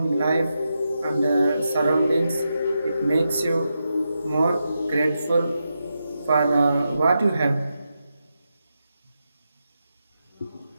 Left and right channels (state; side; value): inverted; both; correlation -0.87